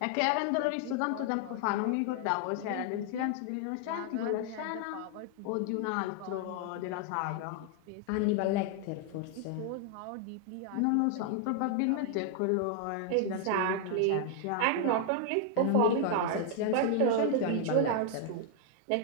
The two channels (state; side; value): different; both; correlation 0.00